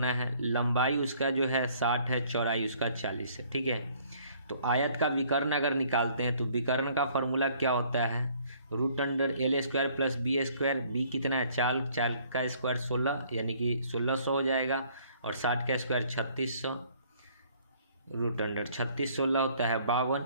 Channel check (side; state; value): both; inverted; correlation -0.60